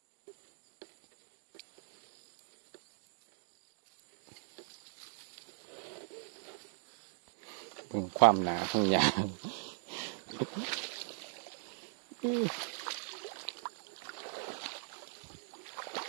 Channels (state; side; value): silent; left; 51 dB below the other